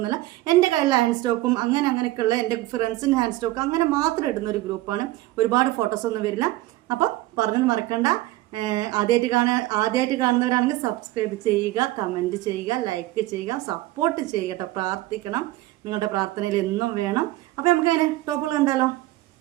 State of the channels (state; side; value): quieter; left; 17.3 dB